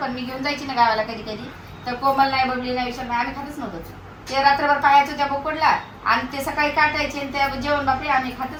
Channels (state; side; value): identical; both; correlation 1.00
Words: मी घेऊन जायची ना गावाला कधी कधी तर कोमल नाही बबली नाही विषय नाही आम्ही खातच नव्हतो ते रात्रभर पाहायचो त्या बोकडला आणि ते सकाळी काटायचे आणि त्या जेवण बापरे आम्ही